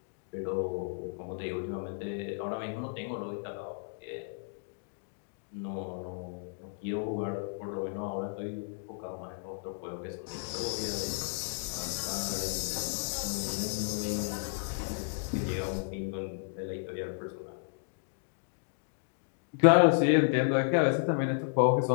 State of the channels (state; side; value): silent; right; digital silence